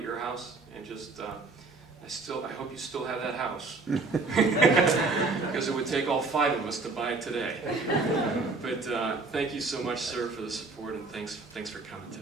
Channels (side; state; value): left; quieter; 3.8 dB